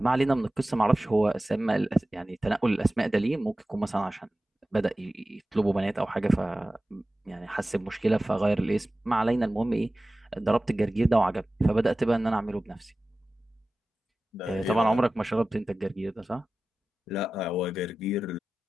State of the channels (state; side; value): normal; both; correlation 0.96